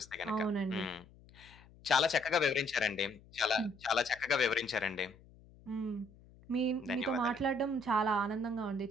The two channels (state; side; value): noise; left; hum, 24 dB below the sound